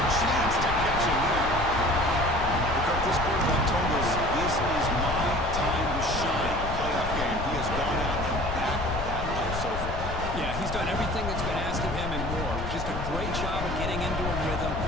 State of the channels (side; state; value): left; noise; rumble, 6 dB below the sound